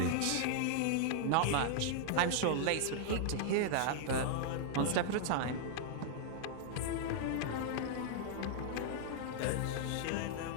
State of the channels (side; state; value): both; different; correlation -0.01